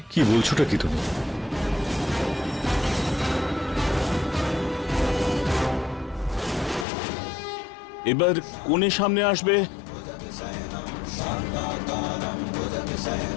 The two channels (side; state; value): right; drops out; at 6.9 s